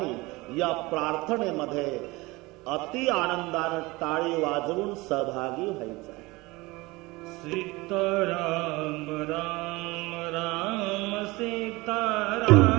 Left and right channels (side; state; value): left; quieter; 22.5 dB